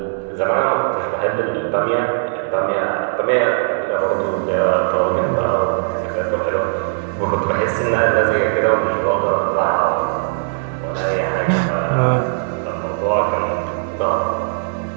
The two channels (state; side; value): silent; left; digital silence